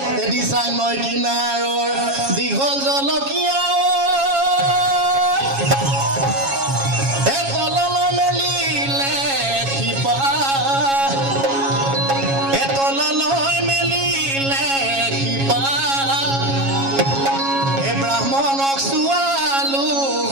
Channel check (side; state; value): left; late; 7.3 ms